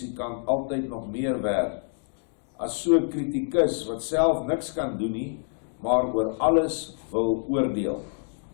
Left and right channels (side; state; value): right; silent; digital silence